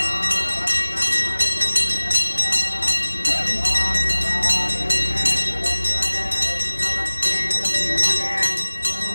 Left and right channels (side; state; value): both; inverted; correlation -1.00